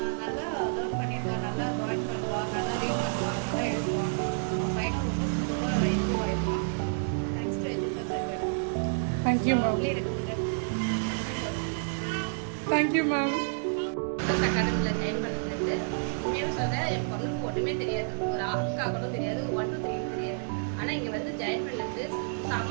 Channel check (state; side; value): silent; left; digital silence